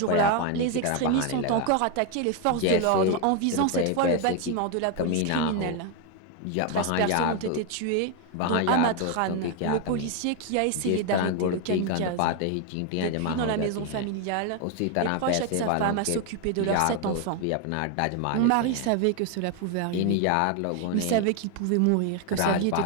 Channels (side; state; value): both; different; correlation 0.01